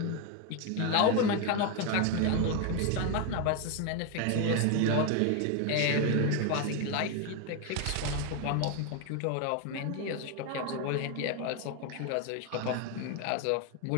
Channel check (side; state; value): both; different; correlation 0.01